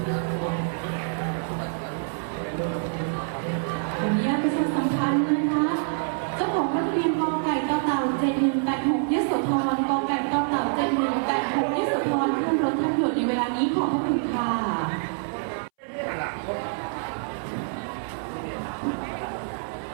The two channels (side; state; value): left; silent; 61 dB below the other